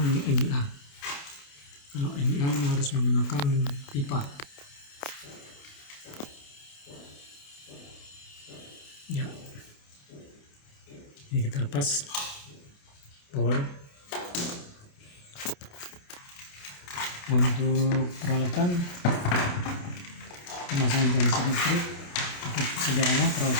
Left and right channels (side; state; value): right; late; 28 ms